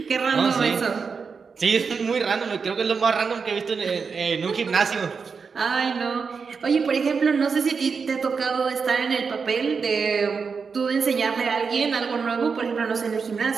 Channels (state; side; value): quieter; left; 5.4 dB